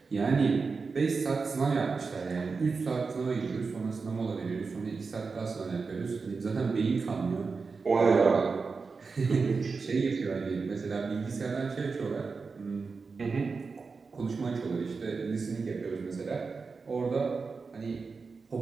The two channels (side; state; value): left; quieter; 4.6 dB